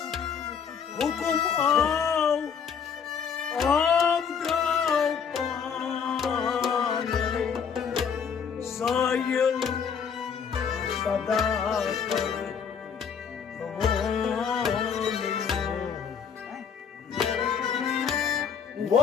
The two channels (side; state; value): right; quieter; 6.9 dB